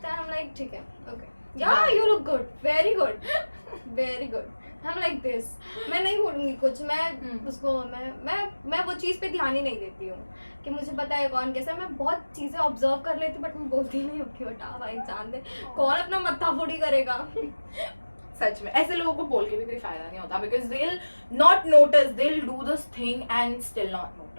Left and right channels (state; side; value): inverted; both; correlation -1.00